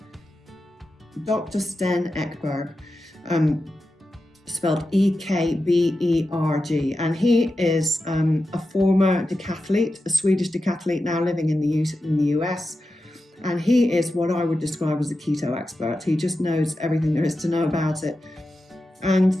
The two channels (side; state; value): both; normal; correlation 0.91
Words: Dr. Sten Ekberg. Spelled Ekberg, and he is a former decathlete, a Swedish decathlete now living in the US, and he is what I would describe as a keto expert. He just knows everything there is to know about it, and